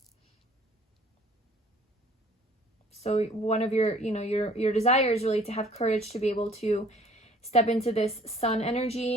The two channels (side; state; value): both; normal; correlation 0.55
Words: So one of your, you know, your desire is really to have courage to be able to step into this Sun